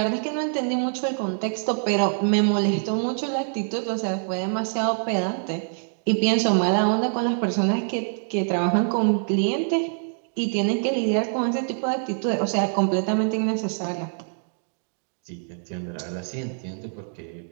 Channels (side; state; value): left; silent; digital silence